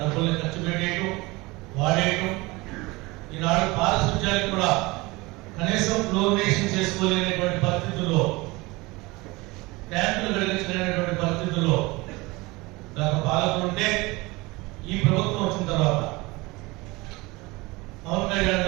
డబ్బుల్ని ఖర్చు పెట్టేయటం, వాడేయటం. ఈనాడు పారిశుధ్యానికి కూడా కనీసం ఫ్లోరినేషన్ చేసుకోలేనటువంటి పరిస్థితుల్లో, ట్యాంకులు కలిగించలేనటువంటి పరిస్థితుల్లో గత పాలకులు ఉంటే, ఈ ప్రభుత్వం వచ్చిన తర్వాత పవన్ కళ్యాణ్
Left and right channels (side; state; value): left; quieter; 23.0 dB